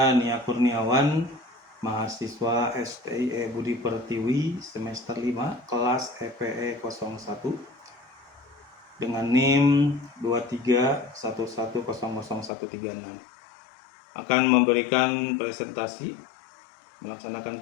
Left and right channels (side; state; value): right; drops out; at 12.5 s